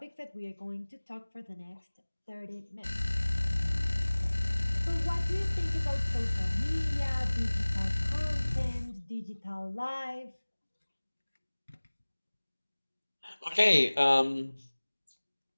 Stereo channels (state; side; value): inverted; both; correlation -1.00